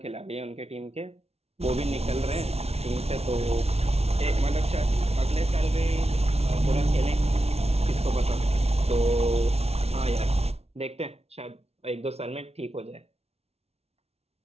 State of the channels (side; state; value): left; late; 0.30 ms